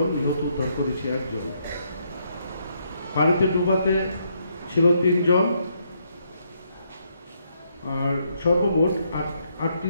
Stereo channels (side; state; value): both; inverted; correlation -0.75